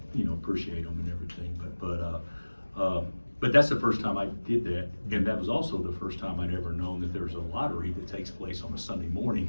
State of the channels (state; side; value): inverted; both; correlation -1.00